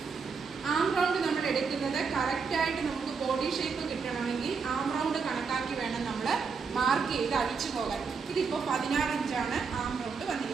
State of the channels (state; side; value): quieter; left; 5.4 dB